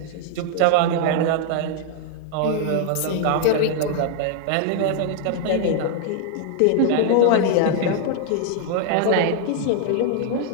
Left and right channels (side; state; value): both; different; correlation 0.00